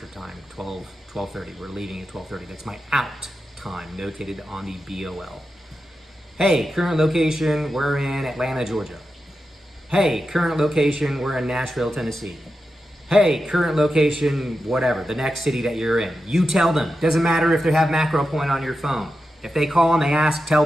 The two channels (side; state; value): both; normal; correlation 0.90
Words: time, 12:30. We're leaving at 12:30. That's my out time, notated on the BOL. Hey, current location, we're in Atlanta, Georgia. Hey, current location, we're in Nashville, Tennessee. Hey, current location, whatever, the next city that you're in. You tell them. Doesn't matter if they have Macro Point on your phone. If they call and they ask, tell